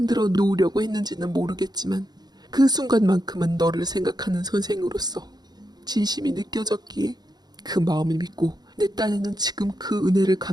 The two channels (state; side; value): late; left; 0.20 ms